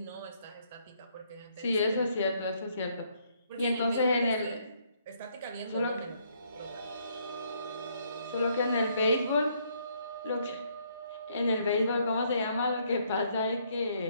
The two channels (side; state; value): both; inverted; correlation -0.70